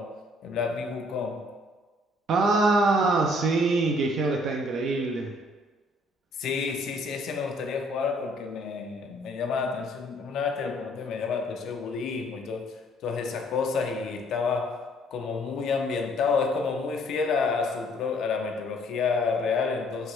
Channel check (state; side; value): normal; both; correlation 0.62